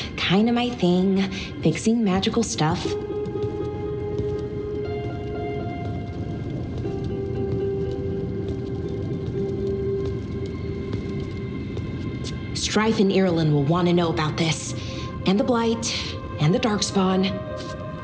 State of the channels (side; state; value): both; identical; correlation 1.00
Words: kinda my thing, fixing magical stuff. Strife and Ireland will want to know about this. And the Blight, and the Darkspawn.